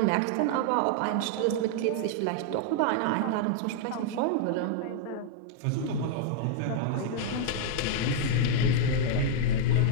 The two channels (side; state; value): both; different; correlation -0.01